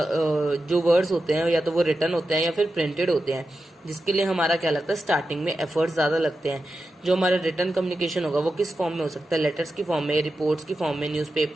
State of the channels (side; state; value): both; normal; correlation 0.90